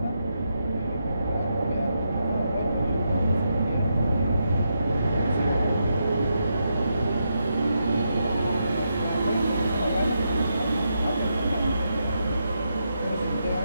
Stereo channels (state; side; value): inverted; both; correlation -0.83